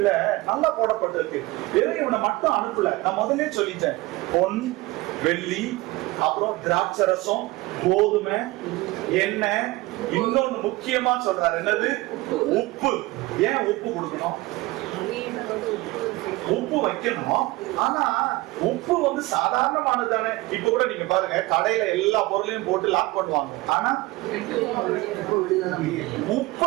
நல்லா போடப்பட்டிருக்கு. வெறும் இவனை மட்டும் அனுப்பல. நான் முதல்ல சொல்லிட்டேன், பொன் வெள்ளி, அப்புறம் திராட்சரசம், கோதுமை, எண்ணெய், இன்னொன்னு முக்கியமா சொல்றாரு, என்னது? உப்பு. ஏன் உப்பு கொடுக்கணும்? உப்பு வைக்கணும். ஆனா உப்பு வந்து சாதாரணமானது தானே. இப்ப கூட நீங்க பாருங்க, கடையில எல்லா பொருளையும் போட்டு லாக் பண்ணுவாங்க. ஆனா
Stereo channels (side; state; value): left; quieter; 20.8 dB